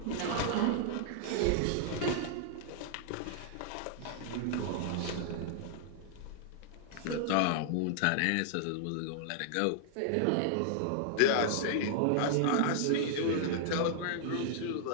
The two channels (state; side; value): different; both; correlation -0.01